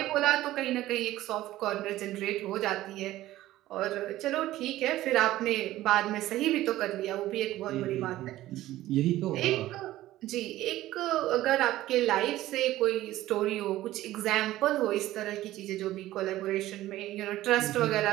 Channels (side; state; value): left; quieter; 15.3 dB